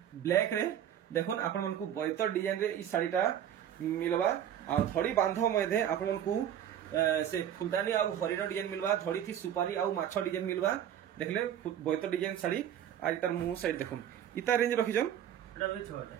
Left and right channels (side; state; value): left; quieter; 10.1 dB